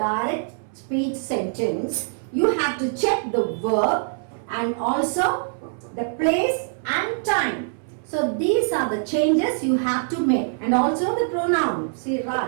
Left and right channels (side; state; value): left; silent; 63 dB below the other